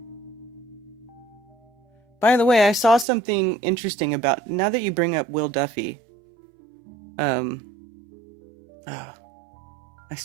By the way, I saw something interesting about... Now that you bring up Will Duffy... I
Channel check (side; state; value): left; drops out; at 3.1 s